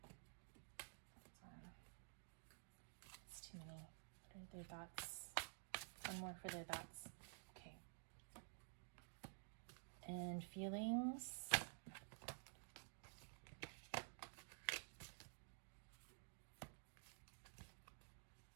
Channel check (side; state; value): left; silent; digital silence